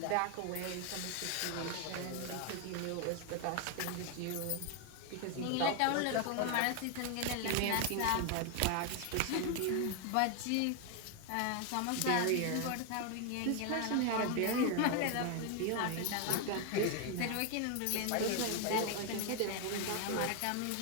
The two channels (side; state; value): both; different; correlation 0.01